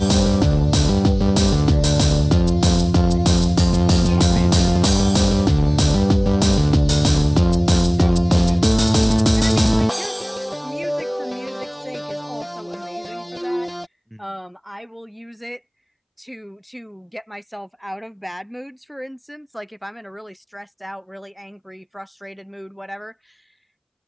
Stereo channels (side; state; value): both; identical; correlation 1.00